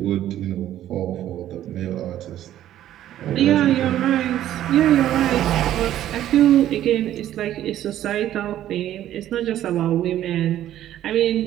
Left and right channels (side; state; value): left; quieter; 12.3 dB